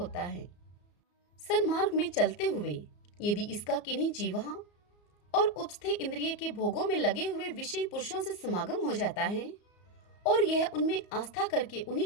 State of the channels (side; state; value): right; late; 34 ms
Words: है। सन्मार्ग में चलते हुए यदि इसका किन्हीं जीवा और उपस्थे इंद्रिय के भोगों में लगे हुए विषयी पुरुषों से समागम हो जाता है और यह उनमें आस्था करके